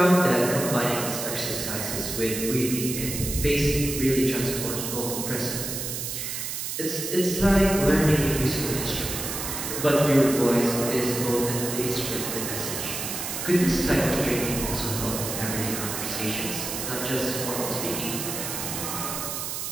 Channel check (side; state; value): right; noise; hiss, 4 dB below the sound